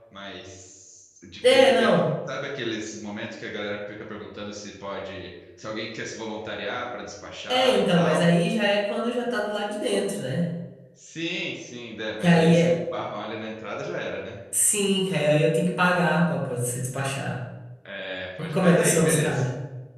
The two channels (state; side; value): identical; both; correlation 1.00